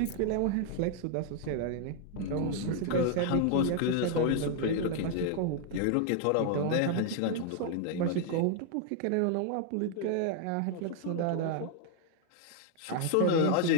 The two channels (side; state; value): both; different; correlation 0.00